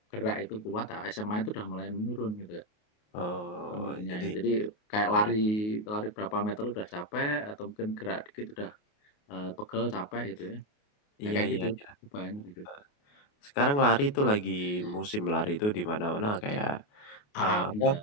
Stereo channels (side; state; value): right; late; 28 ms